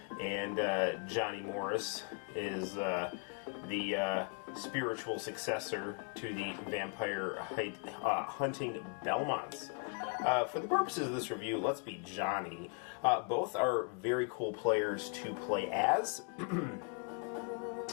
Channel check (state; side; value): quieter; right; 37.1 dB